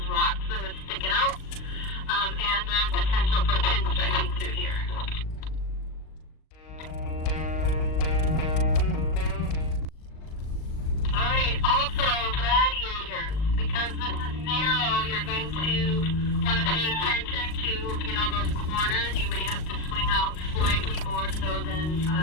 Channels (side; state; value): right; late; 38 ms